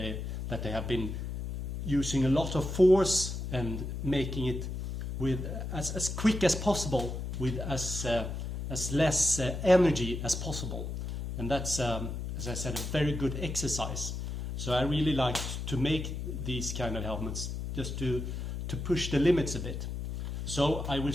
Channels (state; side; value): noise; left; hum, 5 dB below the sound